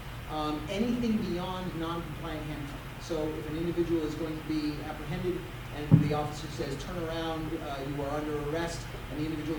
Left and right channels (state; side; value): identical; both; correlation 1.00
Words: Anything beyond non-compliant handcuffing. So if an individual is going to be apprehended and the officer says, turn around, you are under arrest, and the